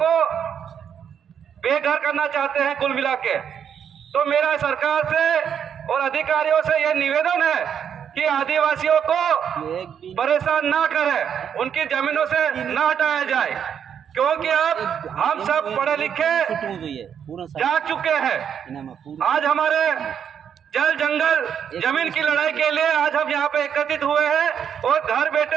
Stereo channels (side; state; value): left; quieter; 8.2 dB